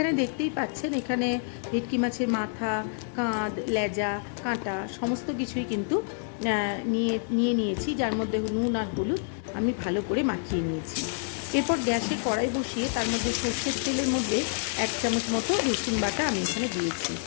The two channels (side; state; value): right; silent; 59 dB below the other